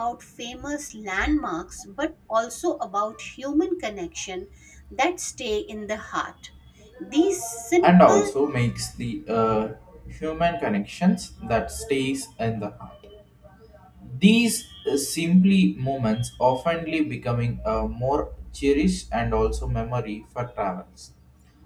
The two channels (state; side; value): identical; both; correlation 1.00